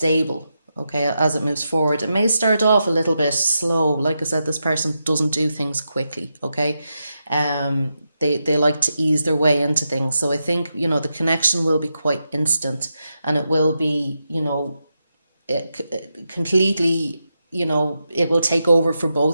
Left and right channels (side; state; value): both; inverted; correlation -0.87